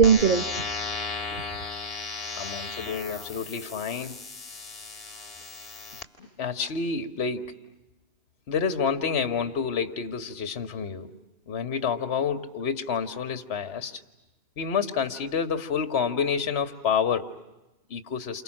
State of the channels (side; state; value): right; late; 3.0 ms